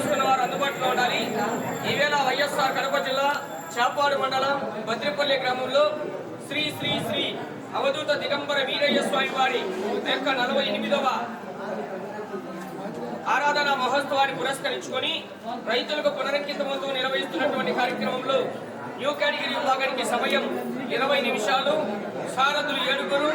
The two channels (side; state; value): both; identical; correlation 1.00